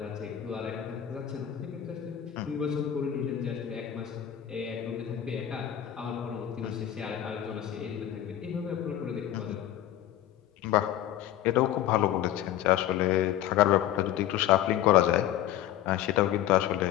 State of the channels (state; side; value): quieter; right; 11.9 dB